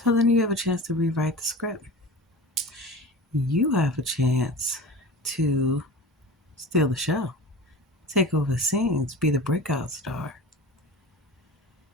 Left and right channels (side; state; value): both; normal; correlation 0.34